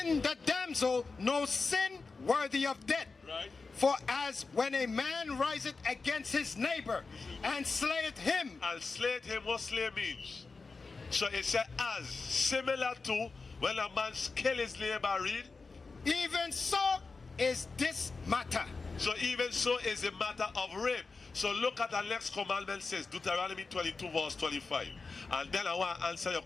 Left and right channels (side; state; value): right; quieter; 4.2 dB